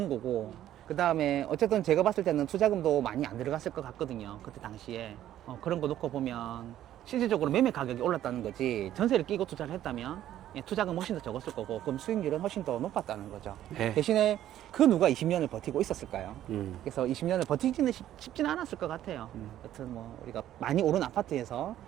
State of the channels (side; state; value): left; quieter; 12.2 dB